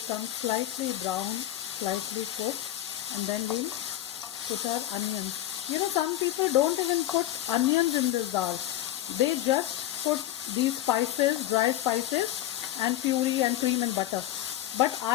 slightly brown, slightly cooked, and then we'll put our onions. You know, some people don't even put onions in this dal. They just put these spices, dry spices, and puree and cream and butter. but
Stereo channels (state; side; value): quieter; right; 13.5 dB